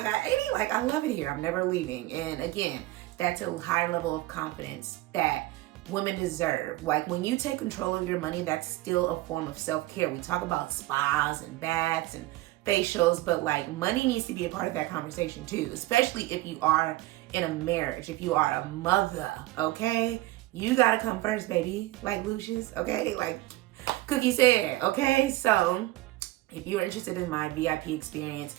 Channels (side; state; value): left; quieter; 17.9 dB